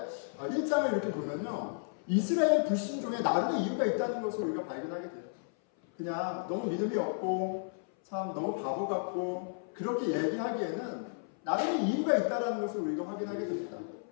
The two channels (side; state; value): right; silent; 56 dB below the other